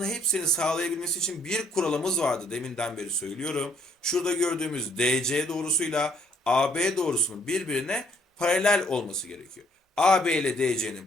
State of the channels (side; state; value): both; normal; correlation 0.65